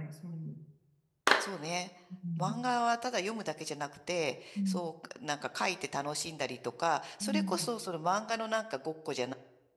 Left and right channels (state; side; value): identical; both; correlation 1.00